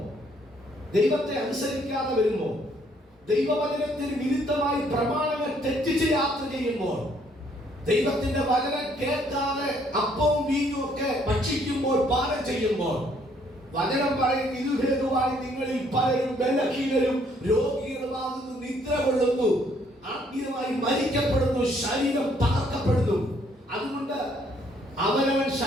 ദൈവത്തെ അനുസരിക്കാതെ വരുമ്പോൾ, ദൈവവചനത്തിന് വിരുദ്ധമായി പ്രമാണങ്ങൾ തെറ്റിച്ച് യാത്ര ചെയ്യുമ്പോൾ, ദൈവത്തിന്റെ വചനം കേൾക്കാതെ അപ്പവും വീഞ്ഞും ഒക്കെ ഭക്ഷിക്കുമ്പോൾ, പാനം ചെയ്യുമ്പോൾ, വചനം പറയും, ഇത് ഹേതുവായി നിങ്ങളിൽ പലരും ബലഹീനരും രോഗികളുമാകുന്നു, നിദ്ര കൊള്ളുന്നു, ആത്മീയമായി മരിക്കപ്പെടുന്നു, ശരീരം തകർക്കപ്പെടുന്നു. അതുകൊണ്ട് അവനവൻ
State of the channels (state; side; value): normal; both; correlation 0.66